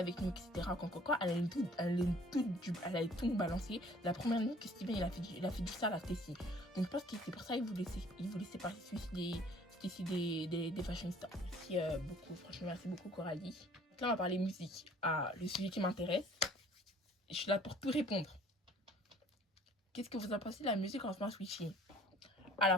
nous, etc., quand, elle allait tout nous balancer. La première nuit que Steven, il a fait du sale à Stacy. Donc, je pense que c'est pour ça qu'il voulait séparer Stacy des fashion stars. Merci beaucoup, franchement, merci beaucoup, Coralie. Donc là, on va parler musique. Le sujet qui m'intéresse. Je suis là pour tout répondre. Qu'est-ce que vous en pensez de la musique en ce moment, Sweetie?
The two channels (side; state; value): both; normal; correlation 0.54